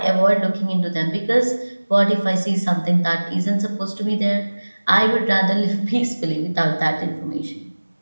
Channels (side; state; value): both; inverted; correlation -1.00